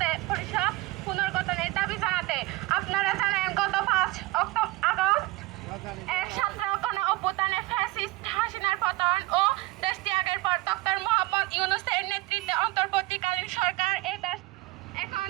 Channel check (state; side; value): quieter; left; 20.6 dB